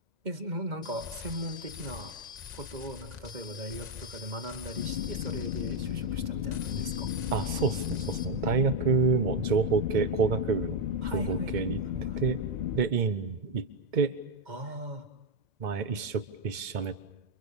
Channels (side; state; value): left; late; 2.2 ms